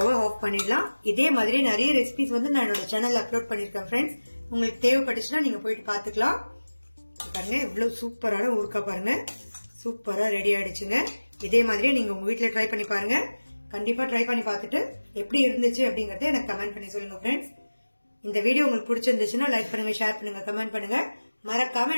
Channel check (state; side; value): inverted; both; correlation -1.00